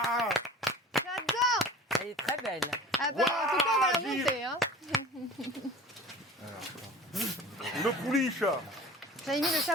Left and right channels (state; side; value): normal; both; correlation 0.42